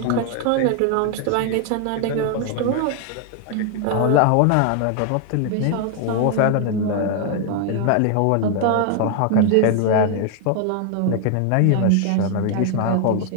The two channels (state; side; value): different; both; correlation 0.00